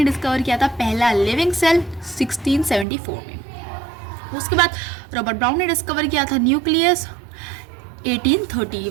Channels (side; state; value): left; drops out; at 2.9 s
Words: डिस्कवर किया था पहला लिविंग सेल 1674 में। उसके बाद रॉबर्ट ब्राउन ने डिस्कवर किया था न्यूक्लियस